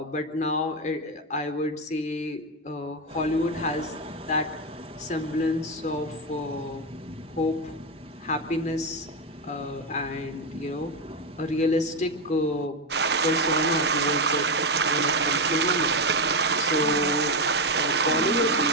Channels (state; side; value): normal; both; correlation 0.09